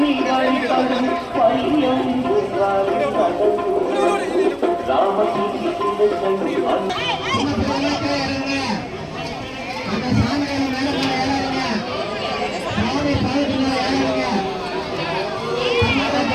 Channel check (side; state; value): both; identical; correlation 1.00